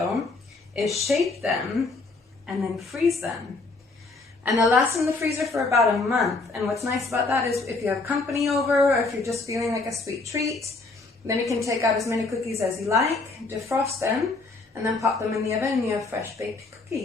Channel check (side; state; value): right; quieter; 3.6 dB